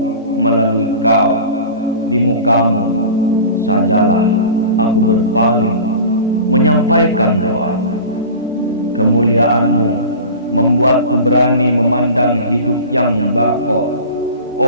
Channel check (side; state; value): both; inverted; correlation -0.36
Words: melalui kau. Di mukamu sajalah aku berpaling menyampaikan doa. Kemuliaanmu membuatku berani memandang hidup yang bako.